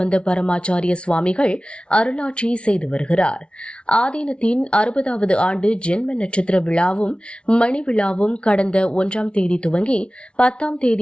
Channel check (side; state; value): right; late; 0.059 ms